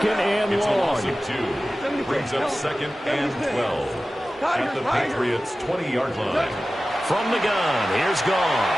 and It's a long. loss of 2. Brings up 2nd and 12 at the Patriots' 20-yard line. From the gun, here's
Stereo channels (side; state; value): both; normal; correlation 0.95